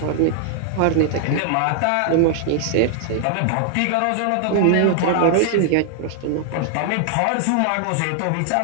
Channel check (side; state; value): both; different; correlation 0.00